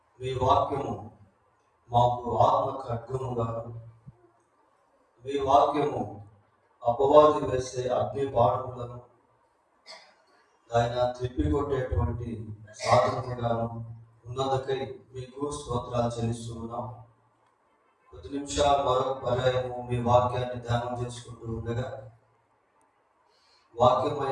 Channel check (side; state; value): both; identical; correlation 1.00